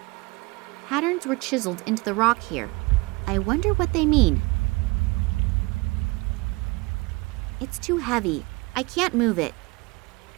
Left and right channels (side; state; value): left; quieter; 24.6 dB